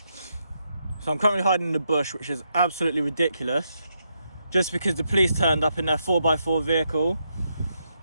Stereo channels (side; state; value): both; inverted; correlation -0.81